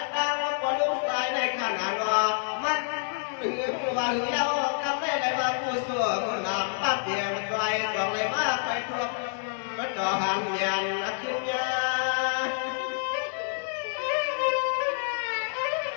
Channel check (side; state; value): right; silent; digital silence